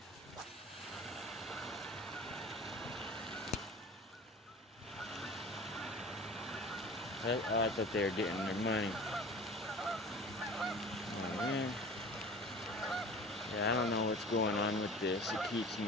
I thought they were getting their money. Oh, man. Yeah, I don't know what's going on with this. It keeps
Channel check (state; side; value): normal; both; correlation 0.41